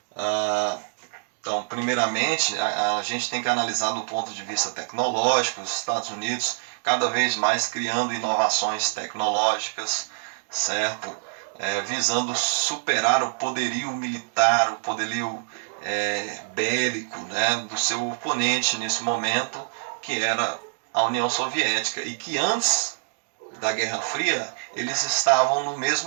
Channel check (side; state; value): left; silent; digital silence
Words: Então, primeiramente, a gente tem que analisar do ponto de vista tecnológico, os Estados Unidos cada vez mais criando inovações tecnológicas, certo? Visando superar o poderio militar, o poderio bélico, né, do seu oponente nesse momento, que era a União Soviética, e que antes da Guerra Fria eles estavam no